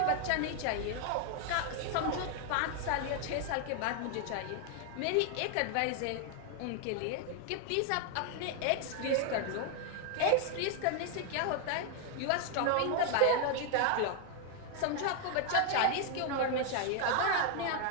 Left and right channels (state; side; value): different; both; correlation 0.00